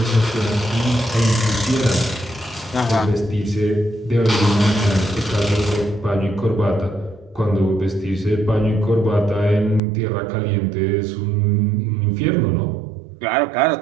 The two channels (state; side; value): drops out; left; at 9.8 s